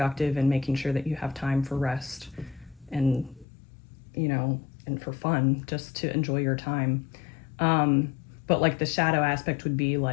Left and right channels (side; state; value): right; drops out; at 3.5 s